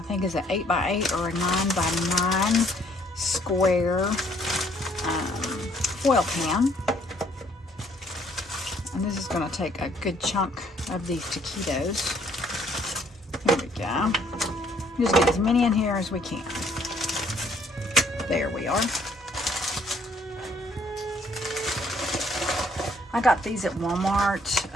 is an 8x8 or a 9x9 square foil pan. And this is going to take a good chunk of these taquitos. Here we go. Just get as many in here as we can. There we are. I got these at Walmart.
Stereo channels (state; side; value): normal; both; correlation 0.64